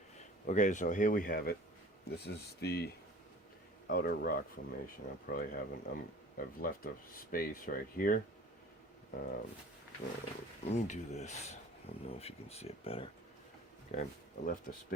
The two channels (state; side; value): normal; both; correlation 0.45